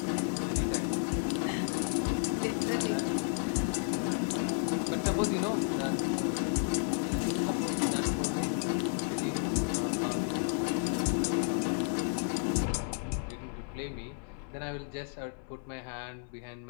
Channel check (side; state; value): right; silent; 56 dB below the other